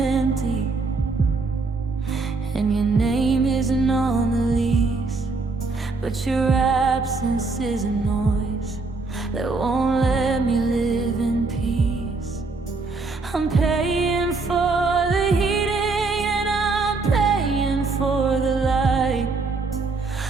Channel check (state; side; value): quieter; left; 3.8 dB